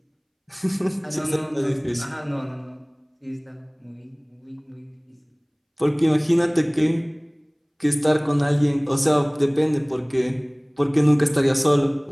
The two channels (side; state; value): both; identical; correlation 1.00